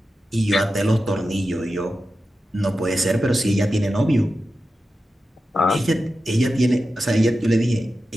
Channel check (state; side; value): normal; both; correlation 0.92